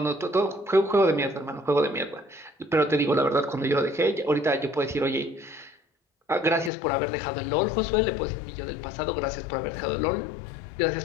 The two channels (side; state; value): right; drops out; at 6.7 s